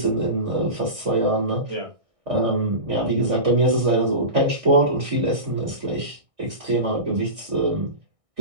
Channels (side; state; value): left; late; 1.6 ms